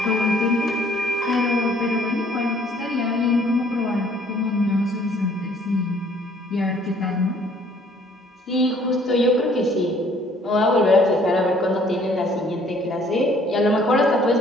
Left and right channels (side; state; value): both; normal; correlation 0.59